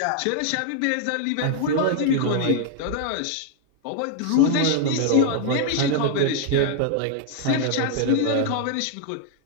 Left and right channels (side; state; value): both; different; correlation -0.01